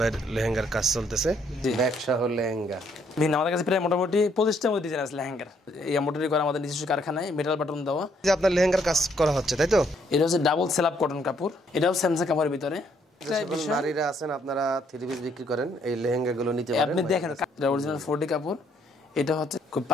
লেহেঙ্গার কাজ চলতেছে, ব্যবসা হল লেহেঙ্গা। আমাদের কাছে প্রায় মোটামুটি 25টার মতো ডিজাইন আছে লেহেঙ্গার। এই এমব্রয়ডারি করা আমাদের নিজস্ব কারখানায়, মেটাল বাটন দেওয়া। যে আপনার লেহেঙ্গার কাজ করা হচ্ছে তাই তো? এটা হচ্ছে ডাবল সেলাপ কটন কাপড়, এটাও স্যামসাং কাপড়ের ভিতরে। নারীরা আছেন আপনারা 3 পিস বিক্রি করেন, এই লেহেঙ্গাগুলো নিতে পারেন। আপনি দেখেন এটা অরিজিনাল 4D কাপড়। এটা হচ্ছে খুব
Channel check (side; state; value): both; normal; correlation 0.69